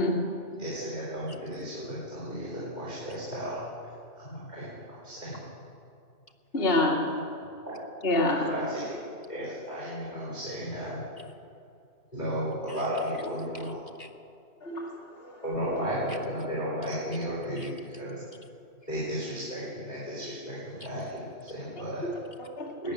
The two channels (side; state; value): right; late; 2.5 ms